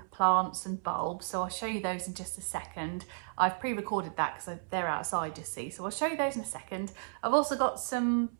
plants and bulbs. So I'll show you those in just a second. I've pre-recorded that because they're outside, you see. So I'll show you those in a second. I've also got some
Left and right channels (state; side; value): silent; left; 56 dB below the other